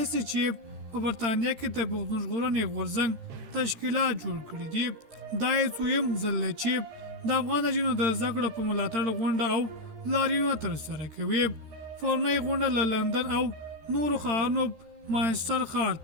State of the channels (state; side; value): late; left; 13 ms